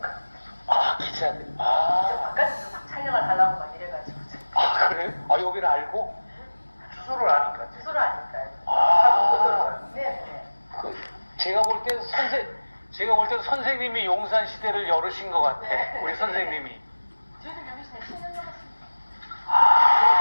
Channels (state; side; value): inverted; both; correlation -1.00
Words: 아 기자들. 저 아, 바깥에서 막 촬영을 하려고 막 이래가지고 아 그래요? 아 여기를 알고? 주소를 아니까. 주소를 아니까요. 아. 네. 제가 볼 땐 선생님이 용산 시대를 열으신 것 같아. 우리 선생님이. 저희들 여기서 10년 넘었습니다.